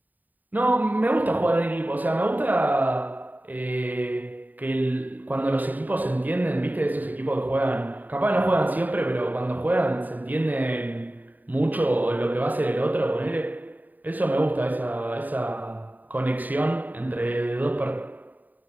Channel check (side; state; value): left; late; 0.085 ms